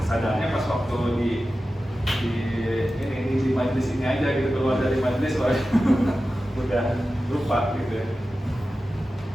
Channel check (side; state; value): both; normal; correlation 0.94